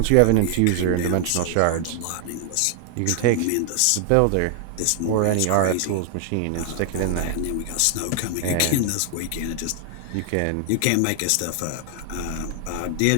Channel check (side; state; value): both; different; correlation 0.00